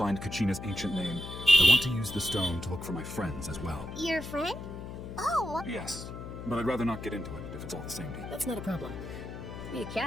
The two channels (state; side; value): noise; left; hum, 9 dB below the sound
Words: find Kachina's ancient name, I want to use the stone to look for my friends as well. Your friend? Oh, Yes, but I'd rather not get into it if it's all the same to you. that's not a problem.